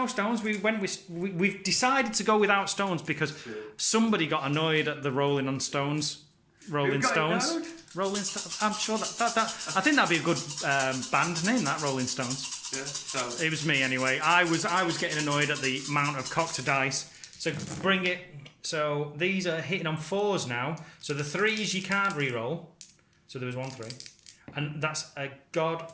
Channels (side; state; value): both; identical; correlation 1.00